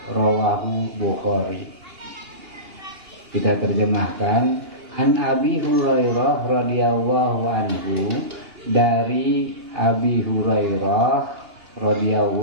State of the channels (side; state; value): left; late; 2.8 ms